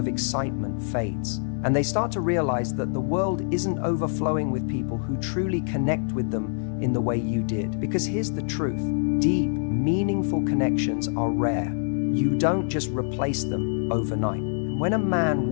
excitement fades, and they start to realize that the world isn't overflowing with people who truly connect with them in the way you did. Because here's the truth. Deep, meaningful connections are rare. You don't just replace them overnight. When a man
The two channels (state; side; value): silent; right; digital silence